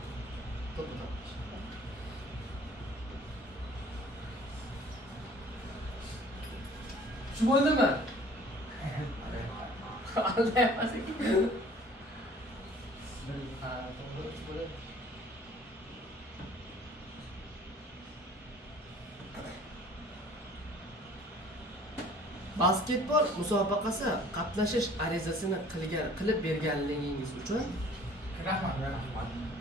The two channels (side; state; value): both; normal; correlation 0.51